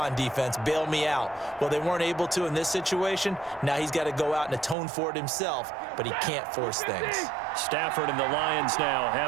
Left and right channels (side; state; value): left; drops out; at 4.8 s